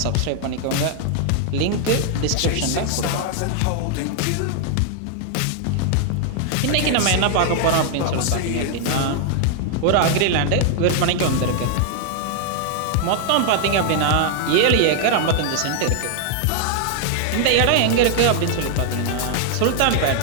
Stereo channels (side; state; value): both; different; correlation 0.00